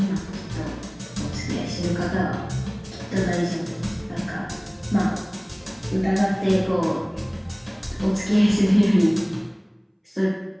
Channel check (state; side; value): identical; both; correlation 1.00